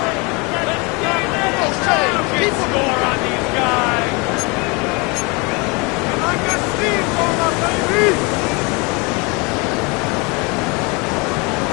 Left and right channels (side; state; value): right; quieter; 28.8 dB